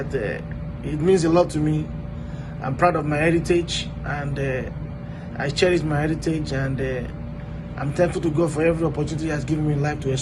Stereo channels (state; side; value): identical; both; correlation 1.00